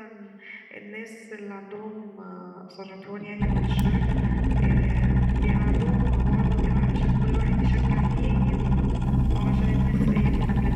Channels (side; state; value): both; identical; correlation 1.00